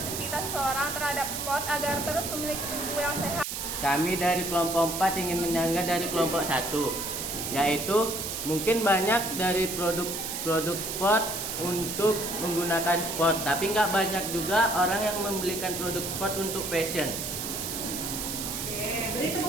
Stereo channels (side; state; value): right; noise; hiss, 4 dB below the sound